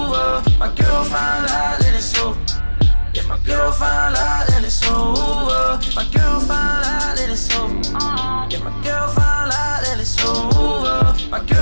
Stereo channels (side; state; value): both; inverted; correlation -1.00